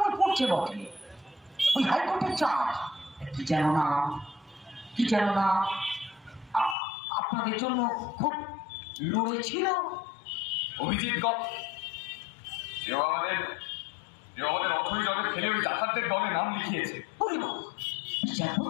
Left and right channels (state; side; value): drops out; right; at 6.8 s